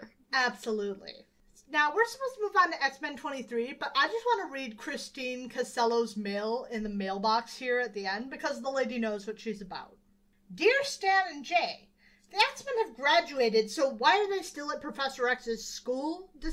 Absolutely. Now, we're supposed to move on to X-Men 23, but I just want to read Christine Casello's mail in the mailbox here at the end, because the lady knows what she's about. Dear Stan and Jay, the X-Men have graduated, so why are they still at Professor X's school?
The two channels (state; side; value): identical; both; correlation 1.00